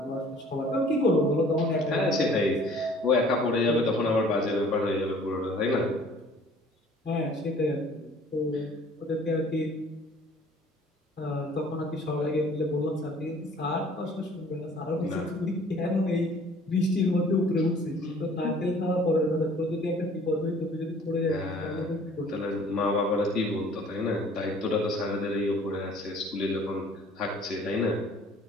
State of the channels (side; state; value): both; normal; correlation 0.53